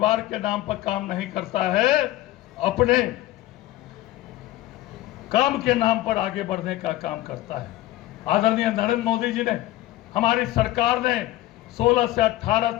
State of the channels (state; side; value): quieter; right; 16.0 dB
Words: के नाम पर काम नहीं करता है, अपने काम के नाम पर आगे बढ़ने का काम करता है। आदरणीय नरेंद्र मोदी जी ने, हमारी सरकार ने 16 से 18